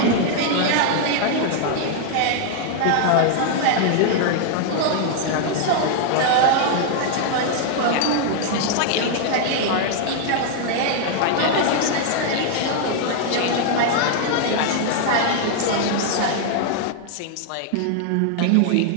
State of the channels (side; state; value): both; different; correlation 0.00